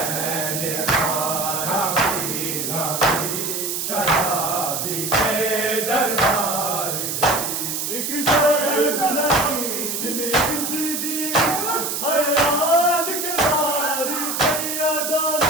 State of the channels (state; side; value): noise; right; hiss, 2 dB below the sound